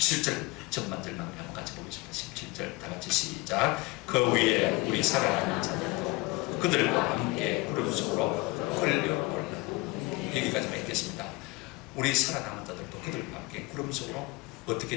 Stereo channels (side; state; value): right; quieter; 23.1 dB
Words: 전반절만 한번 같이 보겠습니다. 17절 다 같이 시작. 그 위에 우리 살아남은 자들도 그들과 함께 구름 속으로 끌려올라. 여기까지만 읽겠습니다. 우리 살아남은 자들도 그들과 함께 구름 속으로 어떻게